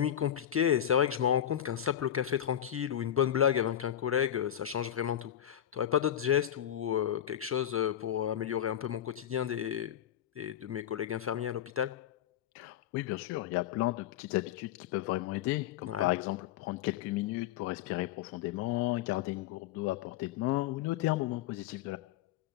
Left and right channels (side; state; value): right; quieter; 10.7 dB